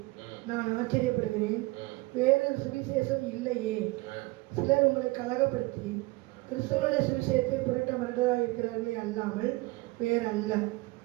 நான் ஆச்சரியப்படுகிறேன். வேறொரு சுவிசேஷம் இல்லையே. சிலர் உங்களை கலகப்படுத்தி கிறிஸ்துவனுடைய சுவிசேஷத்தை புரட்ட மறந்ததாக இருக்கிறார்களே அல்லாமல் வேறல்ல.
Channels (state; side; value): quieter; left; 22.2 dB